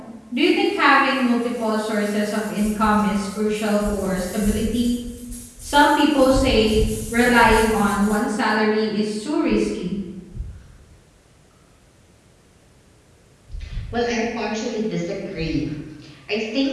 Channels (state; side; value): identical; both; correlation 1.00